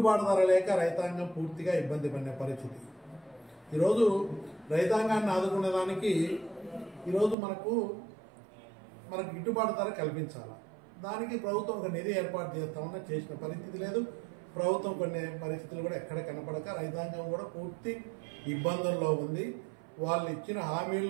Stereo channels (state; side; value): drops out; left; at 7.4 s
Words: ధర లేక రైతాంగం పూర్తిగా ఇబ్బంది పడిన పరిస్థితి. ఈరోజు రైతాంగాన్ని ఆదుకునేదానికి ఈరోజు మనకు గిట్టుబాటు ధర కల్పించాలి. దానికి ప్రభుత్వం ఒక నిధి ఏర్పాటు చేస్తామన్నా చేసిన పరిస్థితి లేదు. ప్రభుత్వం కొన్ని పరిస్థితులు కూడా ఎక్కడ కనపడక రైతాంగం కూడా పూర్తి ఇబ్బందుల్లో ఉంది. వాళ్ళు ఇచ్చిన